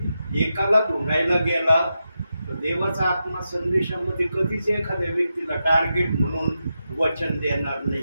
एकाला ढुंढायला गेला तर देवाचा आत्मा संदेशामध्ये कधीच एखाद्या व्यक्तीला टार्गेट म्हणून वचन देणार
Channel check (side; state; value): both; inverted; correlation -0.88